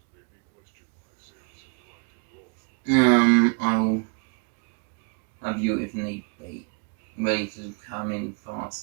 I will have you if need be, ready to come in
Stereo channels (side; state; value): left; quieter; 34.0 dB